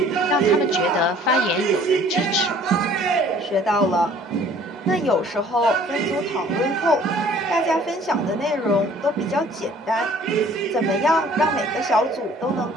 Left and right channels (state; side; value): normal; both; correlation 0.54